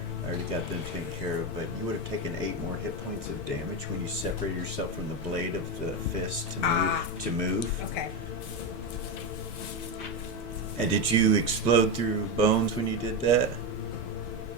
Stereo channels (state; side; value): normal; both; correlation 0.13